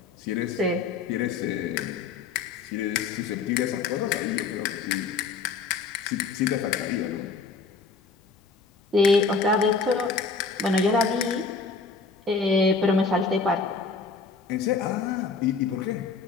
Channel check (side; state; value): right; quieter; 4.6 dB